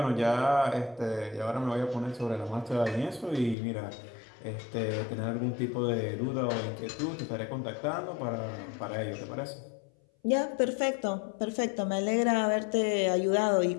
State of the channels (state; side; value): drops out; right; at 3.6 s